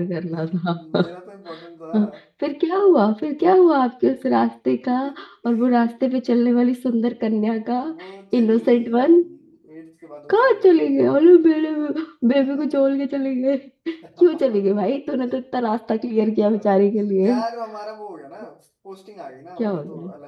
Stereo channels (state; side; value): identical; both; correlation 1.00